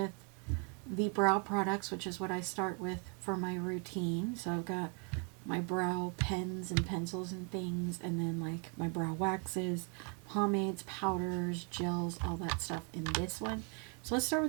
the brow products, which is what I start with for my routine. So I've got my brow pens and pencils and things, and then like my brow waxes, pomades, powders, gels, all that stuff in this one. So let's start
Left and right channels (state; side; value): quieter; left; 36.7 dB